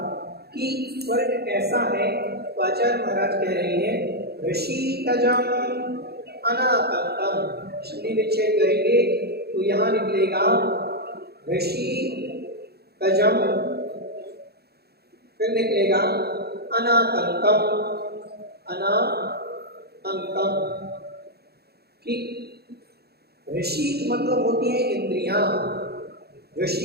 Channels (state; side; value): late; left; 0.46 ms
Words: कि स्वर्ग कैसा है, तो आचार्य महाराज कह रहे हैं ऋषिकजम अनाकंतम। संधि विच्छेद करेंगे तो यहाँ निकलेगा ऋषिकजम, फिर निकलेगा अनाकंतम, अनाकंतम। ठीक, ऋषि मतलब होती है इंद्रियां।